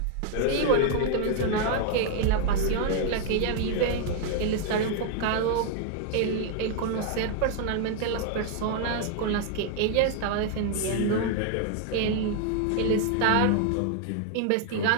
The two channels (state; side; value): different; both; correlation 0.00